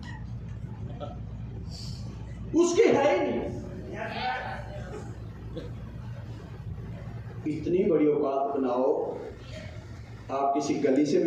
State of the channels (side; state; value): both; identical; correlation 1.00